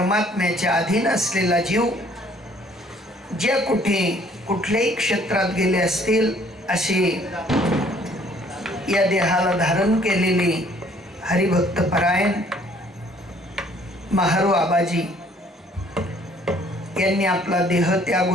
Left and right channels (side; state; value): both; normal; correlation 0.59